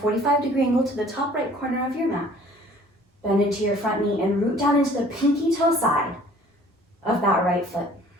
angle to the top right corner of your mat. Bend into your front knee and root down into the pinky toe side of that right foot.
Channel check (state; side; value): normal; both; correlation 0.53